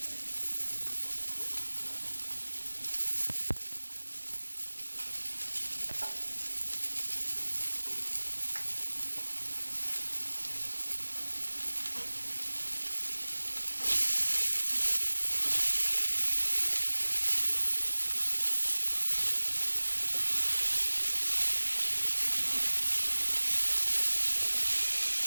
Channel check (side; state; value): both; inverted; correlation -1.00